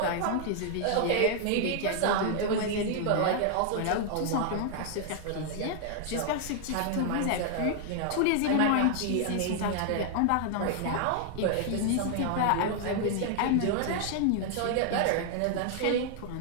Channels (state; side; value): different; both; correlation 0.00